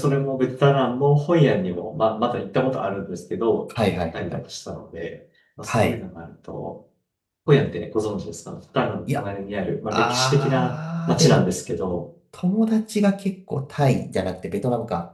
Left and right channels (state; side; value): identical; both; correlation 1.00